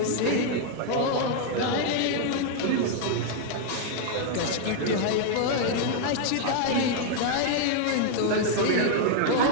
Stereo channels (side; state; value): both; different; correlation 0.00